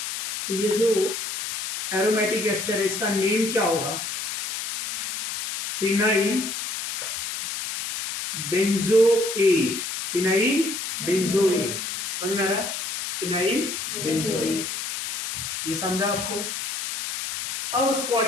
तो ये जो एरोमेटिक एस्टर है इसका नेम क्या होगा, फिनाइल बेंजोएट, फिनाइल बेंजोएट। समझ में आ रहा है, फिनाइल बेंजोएट। ये समझा आपको? अब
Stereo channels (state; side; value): noise; left; hiss, 5 dB below the sound